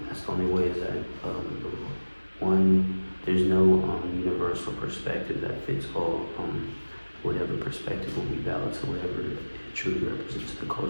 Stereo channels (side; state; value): both; inverted; correlation -1.00